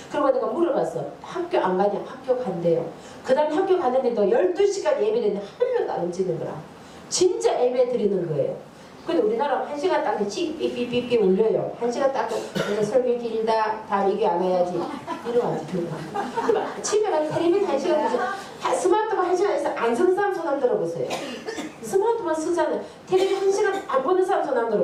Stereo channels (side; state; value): both; identical; correlation 1.00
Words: 그리고 내가 물어봤어. 학교 안 가냐? 학교 간대요. 그 다음에 학교 가는데도 12시간 예배했는데 한 명도 안 움직이는 거라. 진짜 예배 드리는 거예요. 근데 우리나라 1시간 딱 삐삐삐삐삐 울려요. 1시간 딱 그래서 설교 길다. 다음 이게 안 와야지. 이러면 집에 가서 텔레비전 1시간 보세요. 스마트폰 1시간에서 안 쓰는 사람 손 안 들어보세요. 스마트폰 쓰잖아요. 텔레비전 1시간 안 보는 사람 손 안